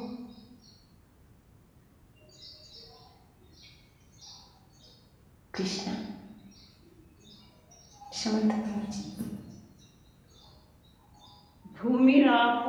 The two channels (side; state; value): both; identical; correlation 1.00